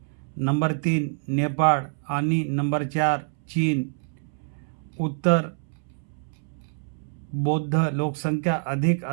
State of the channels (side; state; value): left; silent; 61 dB below the other